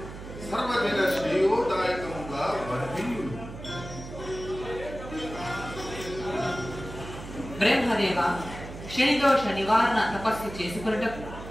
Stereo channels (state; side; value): noise; right; hum, 12 dB below the sound